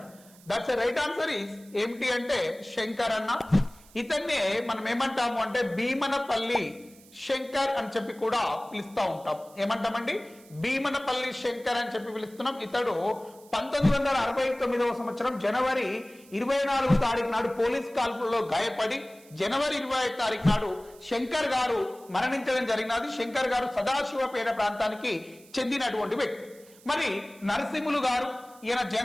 That's right answer is ఏమిటి అంటే శంకర్ అన్న. ఇతన్నే మనం ఏమంటాము అంటే భీమనపల్లి శంకర్ అని చెప్పి కూడా పిలుస్తూ ఉంటాం. ఏమంటామండి? భీమనపల్లి శంకర్ అని చెప్పి పిలుస్తున్నాం. ఇతడు 1969వ సంవత్సరం జనవరి 24వ తారీఖు నాడు పోలీస్ కాల్పుల్లో గాయపడి జనవరి 25వ తారీఖు నాడు శంకర్ గారు మరణించడం జరిగినది. శంకర్ గారు సదాశివపేట ప్రాంతానికి చెందినటువంటి వ్యక్తి. మరి నరసింహులు గారు ఈయన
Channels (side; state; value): right; noise; hiss, 25 dB below the sound